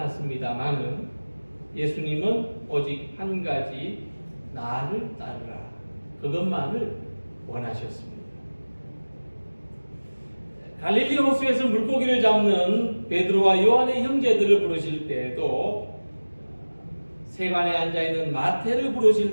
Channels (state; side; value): inverted; both; correlation -1.00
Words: 예수님은 오직 한 가지 나를 따르라, 그것만을 원하셨습니다. 갈릴리 호수에서 물고기를 잡는 베드로와 요한의 형제들을 부르실 때에도, 세관에 앉아있는 마태를